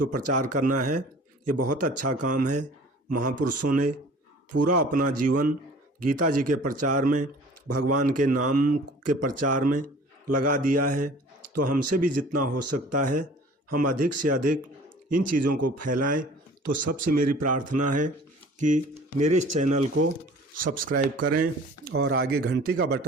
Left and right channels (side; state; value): both; normal; correlation 0.47